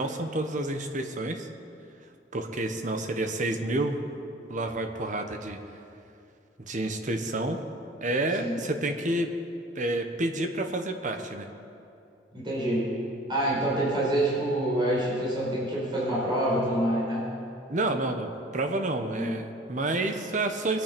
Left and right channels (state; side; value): normal; both; correlation 0.46